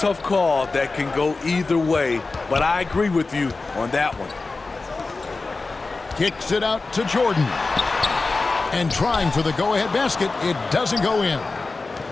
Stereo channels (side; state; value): right; quieter; 3.7 dB